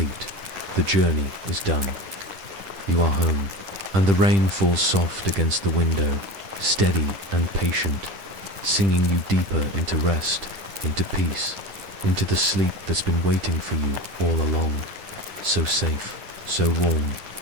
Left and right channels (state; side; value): late; left; 10 ms